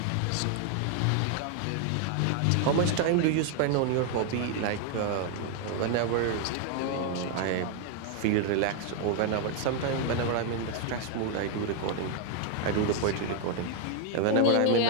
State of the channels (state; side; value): different; both; correlation 0.00